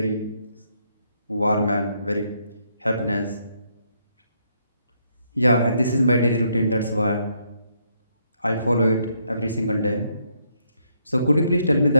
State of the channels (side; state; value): both; inverted; correlation -0.74